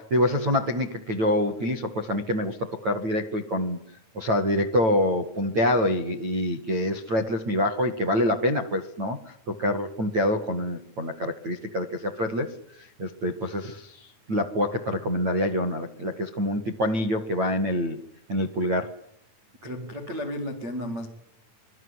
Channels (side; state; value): left; late; 9.1 ms